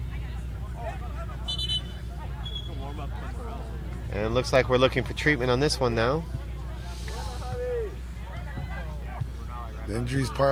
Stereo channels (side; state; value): both; identical; correlation 1.00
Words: And it looks like we're looking for treatment on this one now. The injuries